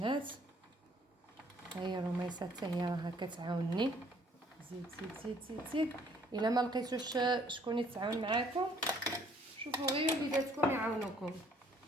ها هي الرميصه حتى هي راها كتعاونني. زيد زيد زيد زيد زيد. الا ما لقيتوش شكون يتعاون معاكم شوفوا غير وليداتكم يعاونوكم،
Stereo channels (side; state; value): both; normal; correlation 0.61